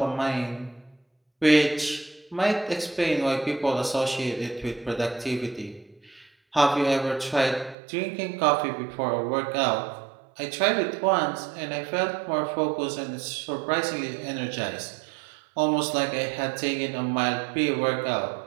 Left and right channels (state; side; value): drops out; left; at 7.8 s